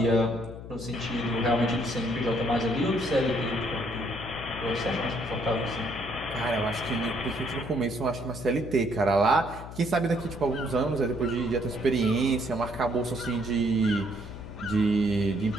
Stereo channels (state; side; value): noise; left; hum, 12 dB below the sound